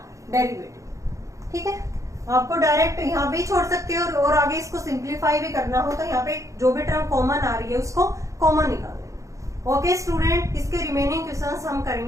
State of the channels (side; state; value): left; late; 0.15 ms